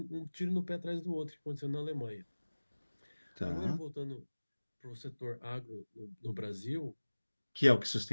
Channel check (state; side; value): inverted; both; correlation -1.00